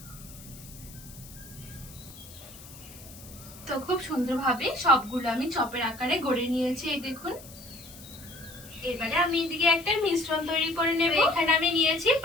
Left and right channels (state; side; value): noise; left; hiss, 18 dB below the sound